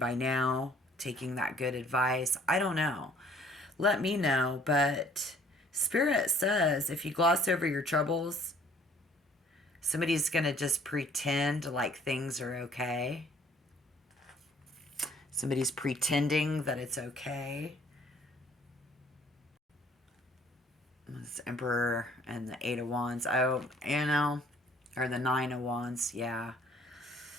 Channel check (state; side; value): normal; both; correlation 0.58